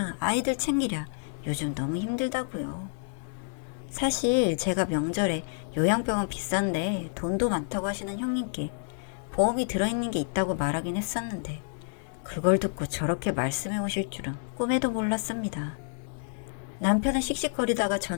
아이들 챙기랴 요즘 너무 힘들다고요. 사실 제가 명절에 요양병원 비싼데 돈도 많다고 하시는 형님께 보험이 들어있는 게 있다고 말하긴 했었는데 그걸 듣고 저렇게 말씀해 오실 줄은 꿈에도 몰랐습니다. 남편은 씩씩거리다가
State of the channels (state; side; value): silent; right; digital silence